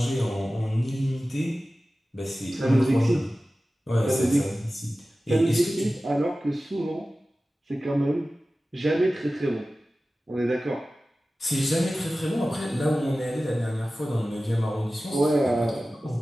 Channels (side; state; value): both; normal; correlation 0.96